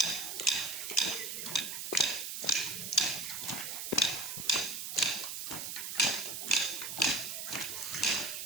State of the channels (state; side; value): noise; right; hiss, 5 dB below the sound